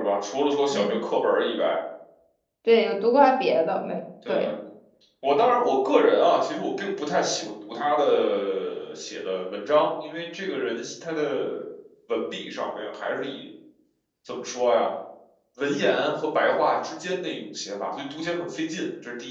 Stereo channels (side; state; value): both; identical; correlation 1.00